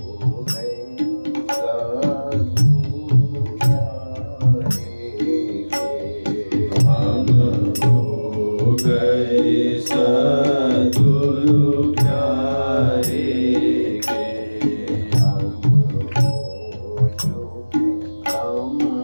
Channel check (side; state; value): both; inverted; correlation -1.00